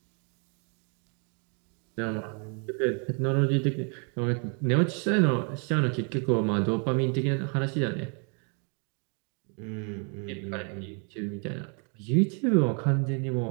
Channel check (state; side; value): quieter; left; 38.6 dB